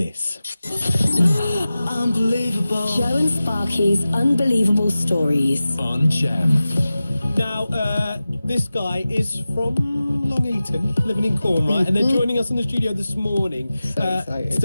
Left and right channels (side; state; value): both; inverted; correlation -0.95